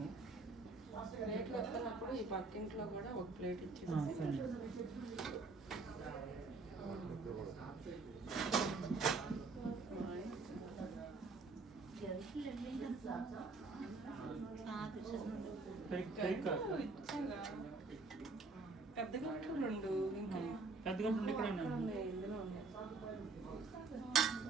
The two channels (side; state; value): left; quieter; 3.9 dB